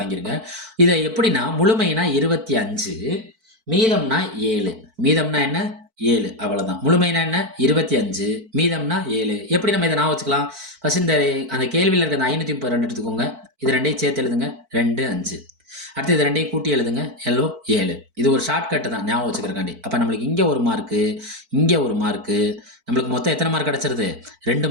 இதை எப்படின்னா முழுமைனா 25, மீதம்னா 7. மீதம்னா என்ன? 7, அவ்வளோதான். முழுமைனா என்ன? 25, மீதம்னா 7. எப்படி நம்ம இதை நான் வச்சுக்கலாம்? ஃபர்ஸ்ட் அந்த கேள்வியில் இருக்க அந்த 532 எடுத்துக்கோங்க. இது 2ஐயும் சேர்த்து எழுதுங்க, 2, 5. அடுத்து இது 2ஐயும் கூட்டி எழுதுங்க, 7. இது ஒரு ஷார்ட்கட்டு தான் ஞாபகம் வச்சுக்கிறக்காண்டி. அப்போ நம்மளுக்கு இங்கே 1 மார்க்கு, இங்கே 1 மார்க்கு, நம்மளுக்கு மொத்தம் எத்தனை மார்க் கிடச்சிருது? 2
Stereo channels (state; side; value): late; left; 4.5 ms